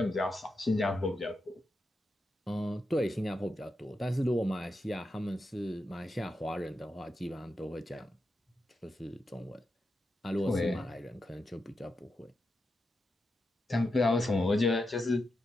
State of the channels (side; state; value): both; normal; correlation 0.87